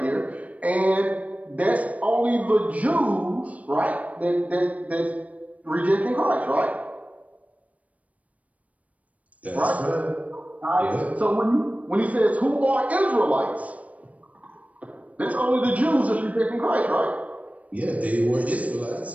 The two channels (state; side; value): late; left; 0.068 ms